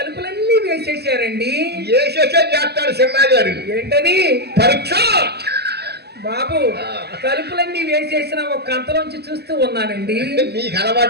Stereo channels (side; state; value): left; late; 0.47 ms